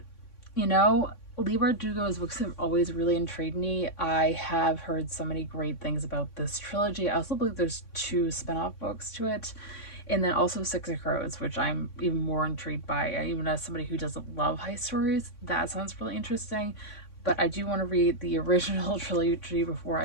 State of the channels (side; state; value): right; late; 3.6 ms